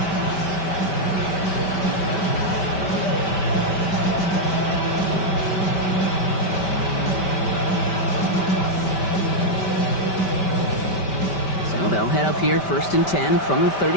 So they'll head up here 1st and 10 from the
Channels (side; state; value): right; late; 5.1 ms